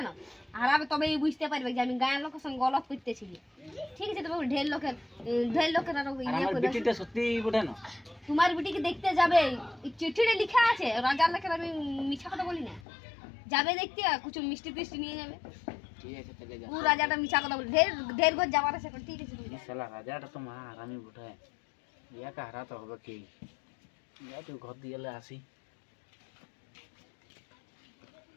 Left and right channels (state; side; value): drops out; right; at 12.9 s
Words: না? হারাবে তবেই বুঝতে পারবে যে আমি গায়ের লোকের সঙ্গে গলত করতেছিলি। ঠিক আছে, তবে ঢের লোকের আরো আর ইয়ে আমার করে। বিটিটা সত্যি বুঝে না। তোমার বিটিকে দেখতে যাবে, এই চিঠিতে লেখা আছে, রাজার লেখা, আমি মিছা কথা বলি না। যাবে দেখতে, কিছু মিষ্টি টিষ্টি নিয়ে যাবে। ঠিক আছে, তাহলে যা। ও রাজাটা মিছা কথা বলে, ঢের ঘর যাবার আছে। ঠিক আছে, তুমি যাও। শালা রাজাটা তো মা আরামি বুঝায়, ইয়াকে হারাতে হবে কি? ইয়া তো ঘর দিয়ে আসি।